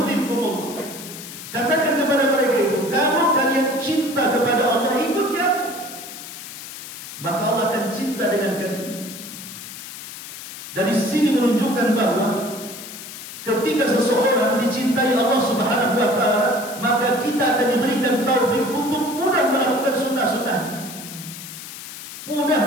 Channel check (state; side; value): noise; left; hiss, 12 dB below the sound